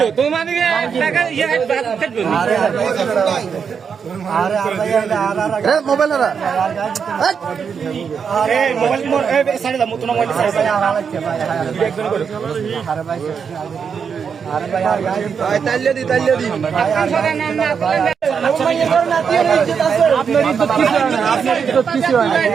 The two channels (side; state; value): left; quieter; 6.5 dB